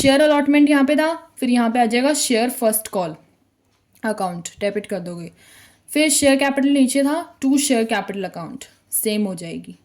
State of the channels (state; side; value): identical; both; correlation 1.00